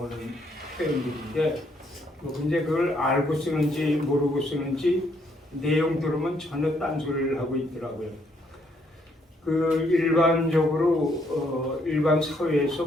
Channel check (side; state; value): both; normal; correlation 0.71